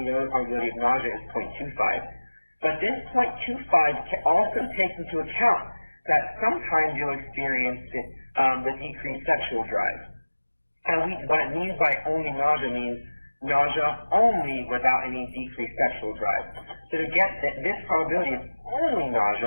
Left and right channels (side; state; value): both; inverted; correlation -1.00